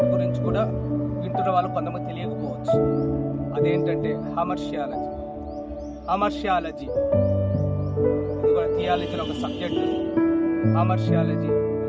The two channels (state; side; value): identical; both; correlation 1.00